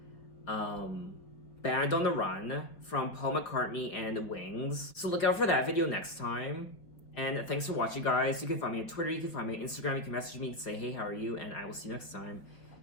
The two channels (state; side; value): late; right; 4.8 ms